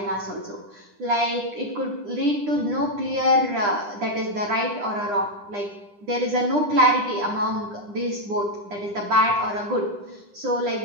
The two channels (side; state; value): left; late; 9.9 ms